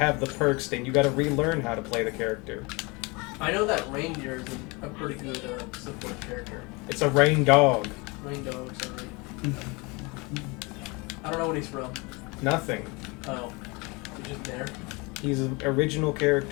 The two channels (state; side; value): quieter; right; 27.2 dB